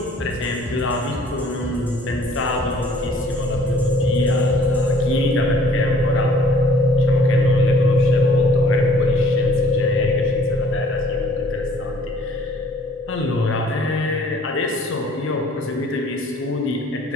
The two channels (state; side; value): normal; both; correlation 0.56